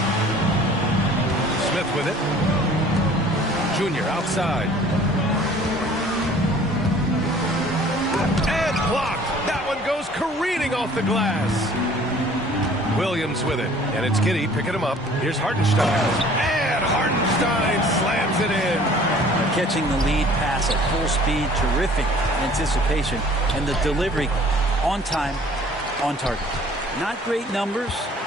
Smith with it. Junior outside. And blocked. That one goes careening off the glass. Williams with it. And it's Giddey picking him up. Here's Hartenstein. And Hartenstein slams it in. Catching the lead pass at full speed. Terrific anticipation. And the delivery on time, on target. Not great numbers,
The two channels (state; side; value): normal; both; correlation 0.52